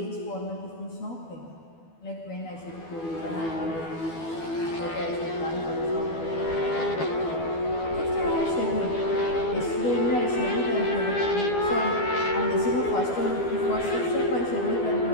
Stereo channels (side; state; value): right; late; 12 ms